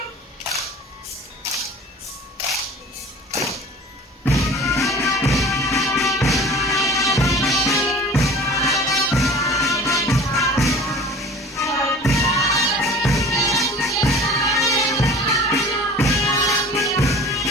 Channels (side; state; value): both; normal; correlation 0.43